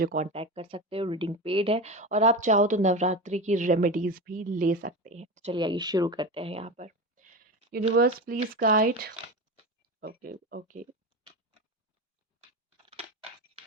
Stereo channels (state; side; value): normal; both; correlation 0.24